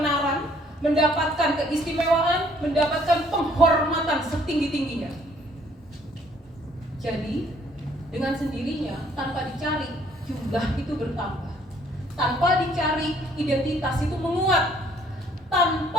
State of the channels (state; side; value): normal; both; correlation 0.62